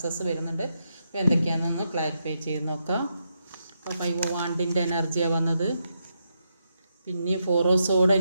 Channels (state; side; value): inverted; both; correlation -0.82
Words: വരുന്നുണ്ട്. അപ്പോൾ എന്തൊക്കെയാണെന്നൊന്ന് ക്ലാരിഫൈ ചെയ്ത് നോക്കാം. അപ്പോൾ 5 വാണ്ടിൻ്റെ എനർജിയാണ് വന്നത്. പിന്നെ 4 ഓഫ് സോഡ്